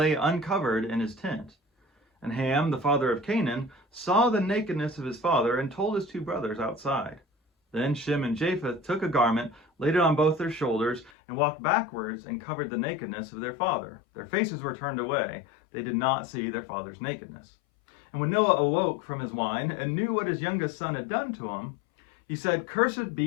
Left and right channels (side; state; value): right; drops out; at 11.1 s